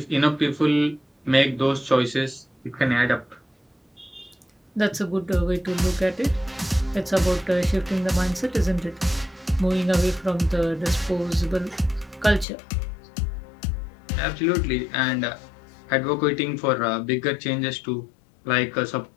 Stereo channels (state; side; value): drops out; right; at 12.5 s